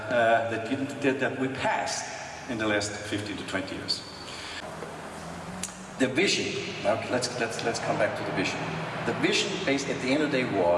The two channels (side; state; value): both; identical; correlation 1.00